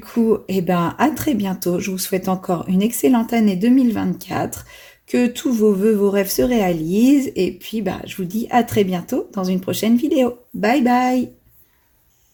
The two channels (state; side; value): identical; both; correlation 1.00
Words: eh ben, à très bientôt. Je vous souhaite encore une excellente année 2024, que tous vos vœux, vos rêves se réalisent. Et puis, bah, je vous dis à très bientôt dans une prochaine vidéo. Bye bye!